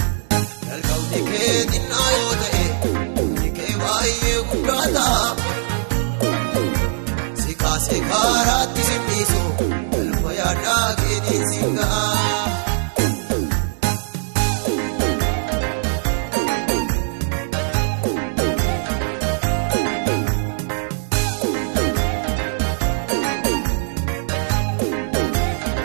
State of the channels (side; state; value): left; silent; 65 dB below the other